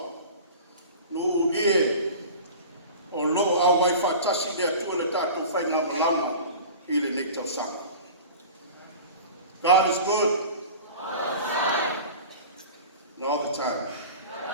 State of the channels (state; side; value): inverted; both; correlation -0.37